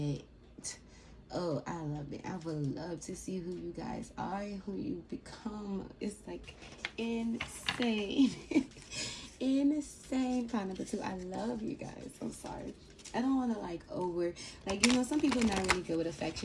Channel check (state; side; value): identical; both; correlation 1.00